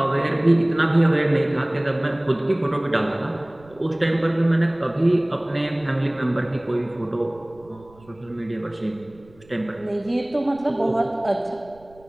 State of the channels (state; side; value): noise; right; rumble, 26 dB below the sound